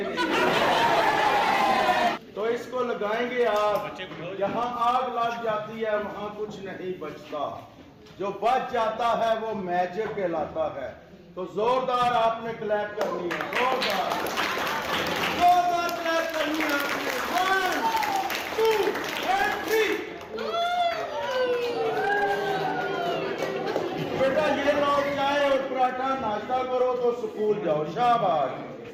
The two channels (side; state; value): both; identical; correlation 1.00